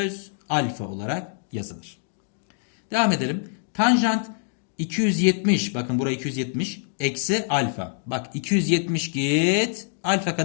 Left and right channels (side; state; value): right; silent; 57 dB below the other